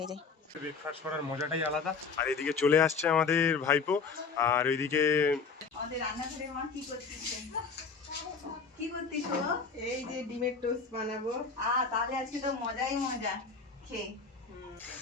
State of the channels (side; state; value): right; quieter; 5.0 dB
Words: যাই। ব্রেকফাস্ট করার মজাটাই আলাদা। আর এদিকে চলে আসছে আমাদের ভাইপো, আর ওইদিকে আমাদের রান্নাঘরে মা কি করতেছেন? কি করতিস? এই যে ডিমের টোস্ট বানাবো। তাহলে আজকে তো মজাই মজা খেয়ে।